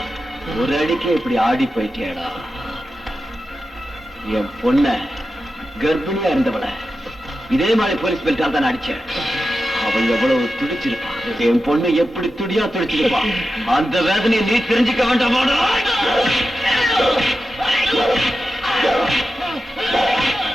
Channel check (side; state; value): both; normal; correlation 0.91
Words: ஒரு அடிக்கு இப்படி ஆடி போயிட்டியாடா. என் பொண்ண கர்ப்பிணியா இருந்தவள இதே மாதிரி போலீஸ் பெல்ட்டால் தான் அடிச்சேன். அவள் எவ்வளவு துடிச்சிருப்பான். என் பொண்ணு எப்படி துடியா துடிச்சிருப்பான். அந்த வேதனையை நீ தெரிஞ்சுக்க வேண்டாமாடா?